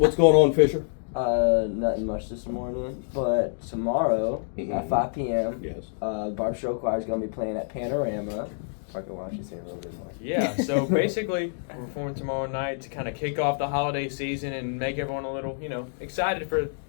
going on, Fisher? Nothing much this morning, but tomorrow at 5 p.m. Yes. Barbe Rock Choir is going to be playing at Panorama. Parker, why don't you say a little bit more? Yeah, so basically, we're performing tomorrow night to kind of kick off the holiday season and make everyone a little, excited for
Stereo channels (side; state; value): right; silent; digital silence